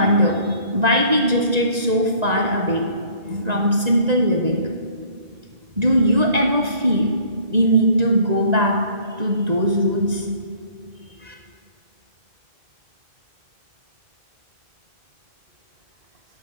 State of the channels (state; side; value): late; left; 1.9 ms